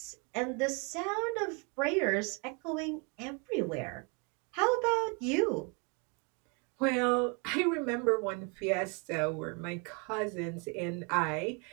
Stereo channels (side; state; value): left; quieter; 33.0 dB